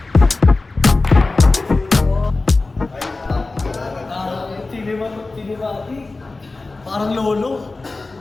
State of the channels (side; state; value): right; quieter; 3.4 dB